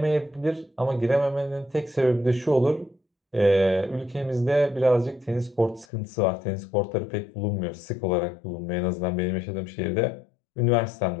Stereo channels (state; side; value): drops out; right; at 5.9 s